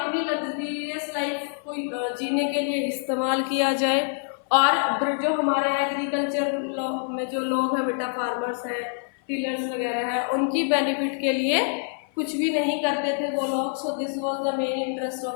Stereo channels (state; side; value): silent; right; 56 dB below the other